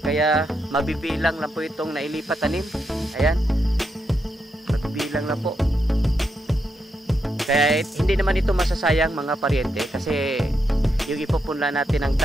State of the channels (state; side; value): normal; both; correlation 0.82